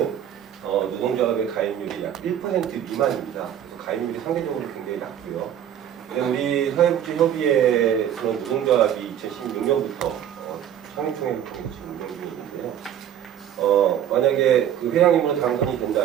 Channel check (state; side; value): quieter; left; 10.1 dB